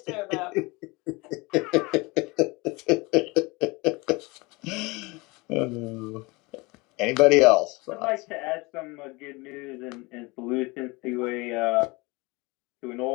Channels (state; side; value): quieter; right; 24.9 dB